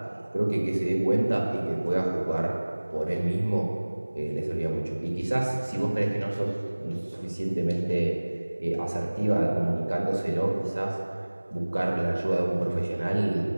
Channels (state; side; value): inverted; both; correlation -1.00